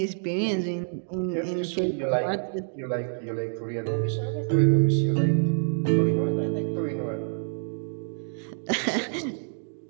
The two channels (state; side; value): silent; left; digital silence